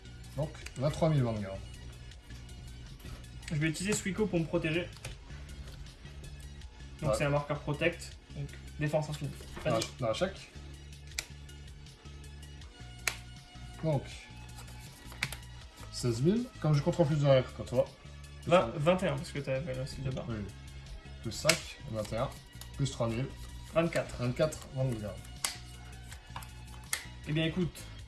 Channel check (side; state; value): both; identical; correlation 1.00